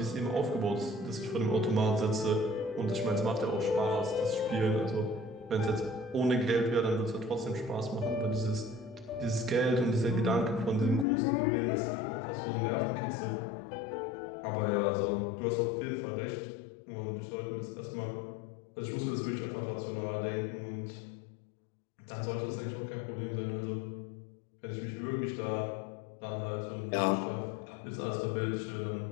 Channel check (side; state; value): right; drops out; at 11.1 s